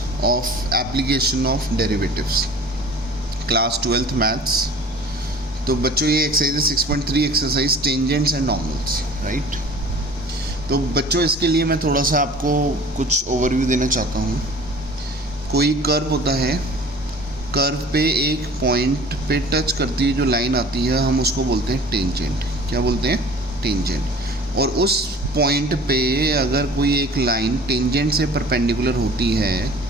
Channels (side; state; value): both; normal; correlation 0.45